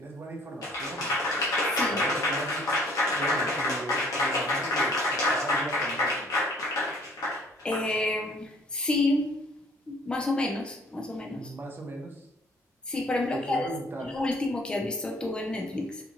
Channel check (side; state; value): both; normal; correlation 0.57